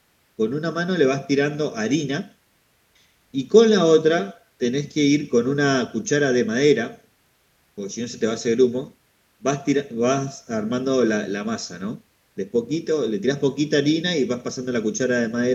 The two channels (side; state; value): both; identical; correlation 1.00